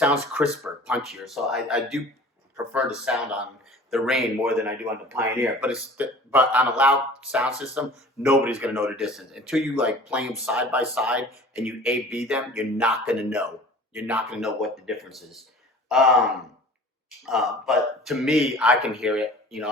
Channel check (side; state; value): both; normal; correlation 0.44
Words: crisper, punchier. So I do prefer the sound on the Rane more than I do on the Pioneer. But on a loud sound system, nobody's gonna know the distance until you like play them side by side and you A/B them. You're not gonna know. You're not gonna know what the difference is. But to me, I can hear it. You